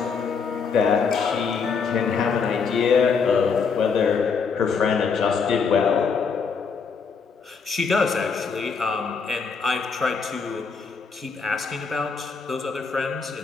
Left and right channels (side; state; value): right; quieter; 5.5 dB